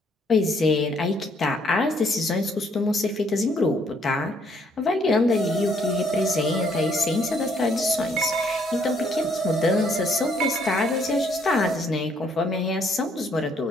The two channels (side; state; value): both; normal; correlation 0.67